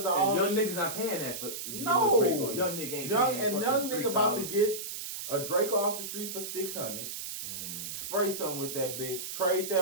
of all young niggas not paying that for no Draco. Young nigga ain't paying. Young nigga about to get a Draco off the street for $600. Spray something with that bitch. Trade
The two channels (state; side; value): noise; right; hiss, 6 dB below the sound